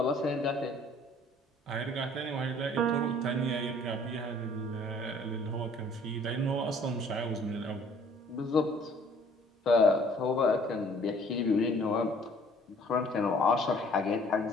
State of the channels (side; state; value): both; normal; correlation 0.56